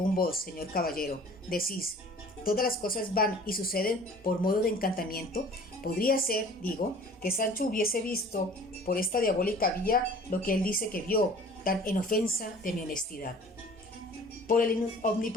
vos, señor caballero, decís, todas las cosas van y suceden por modo de encantamiento, podría ser, digo, que Sancho hubiese visto por esta diabólica vía lo que él dice que vio, tan en ofensa de mi honestidad. Por el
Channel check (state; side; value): normal; both; correlation 0.47